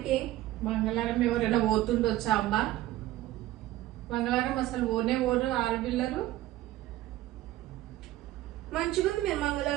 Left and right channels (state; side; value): quieter; left; 15.2 dB